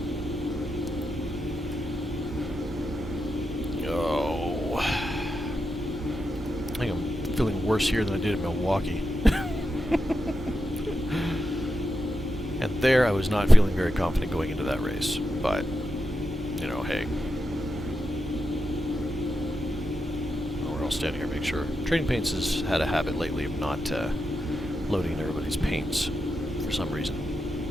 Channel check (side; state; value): both; normal; correlation 0.87